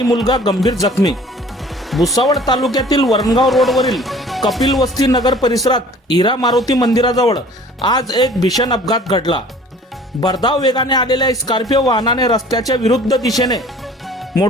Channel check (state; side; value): normal; both; correlation 0.49